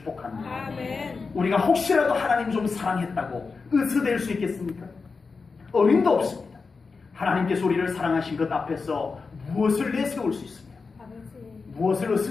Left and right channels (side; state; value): right; quieter; 4.6 dB